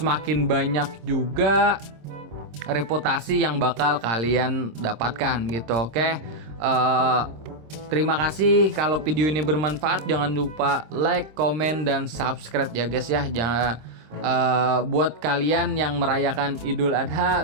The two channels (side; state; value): left; late; 26 ms